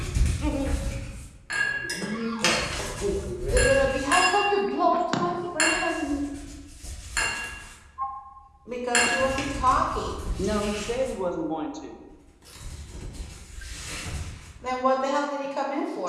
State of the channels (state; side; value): identical; both; correlation 1.00